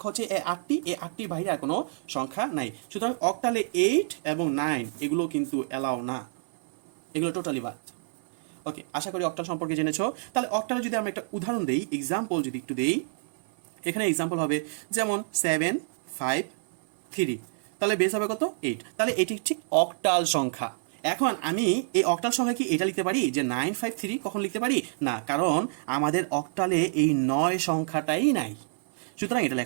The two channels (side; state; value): left; silent; 59 dB below the other